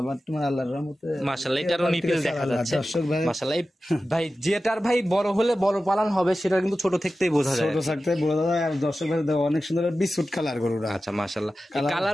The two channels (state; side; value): normal; both; correlation 0.94